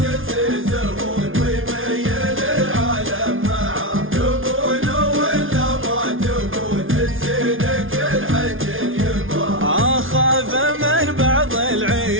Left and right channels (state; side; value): late; left; 0.58 ms